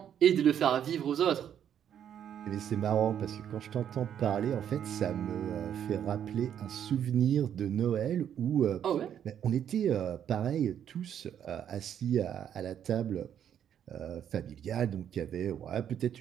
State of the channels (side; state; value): left; quieter; 9.4 dB